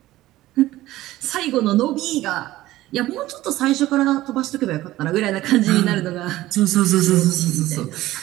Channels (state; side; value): quieter; left; 16.2 dB